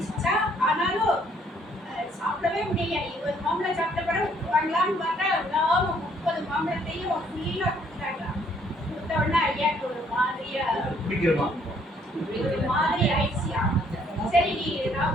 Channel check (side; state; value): both; normal; correlation 0.65